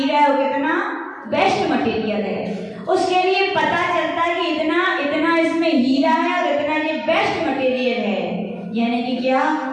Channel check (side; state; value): both; identical; correlation 1.00